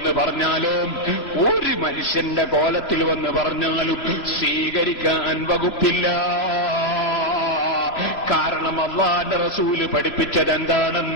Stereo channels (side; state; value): right; late; 2.9 ms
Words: പറഞ്ഞാലും, ഒരു മനുഷ്യന്റെ കോലത്തിൽ വന്ന് പറഞ്ഞാലും സ്വീകരിക്കാൻ വകുപ്പില്ല. കാരണം അല്ലാഹുവിന്റെ റസൂല് പഠിപ്പിച്ചത്